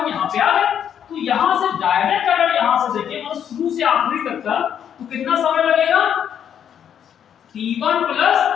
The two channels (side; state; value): right; quieter; 8.9 dB